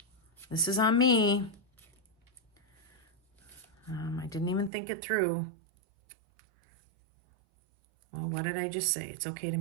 This is on me. I didn't even think it through. Well, what did I just say? It's okay to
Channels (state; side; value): drops out; left; at 4.7 s